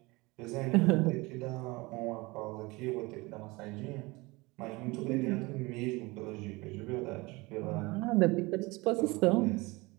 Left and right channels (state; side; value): quieter; left; 23.6 dB